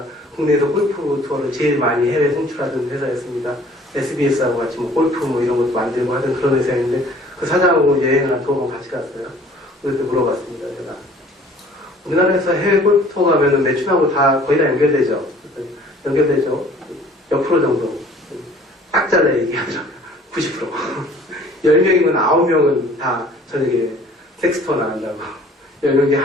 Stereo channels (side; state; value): both; normal; correlation 0.53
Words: 국내에서 골프 투어를 제일 많이 해외 송출하던 회사였습니다. SBS하고 같이 뭐 골프 뭐 이런 것도 만들고 하던 그런 회사였는데 그 사장하고 여행을 한 2번 같이 갔어요. 그래서 물어봤습니다. 제가 우리나라에서 해외 골프 투어 가면은 매춘하고 다 거의 다 연결되죠. 몇 프로 정도 딱 잘라 얘기하더라고요. 90%. 10명이면 9명은 다 저녁에 섹스투어 나간다고. 10명 중에